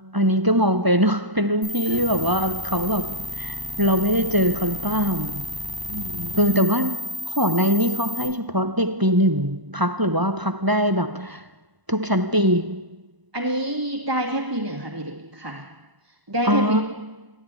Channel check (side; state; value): left; late; 1.0 ms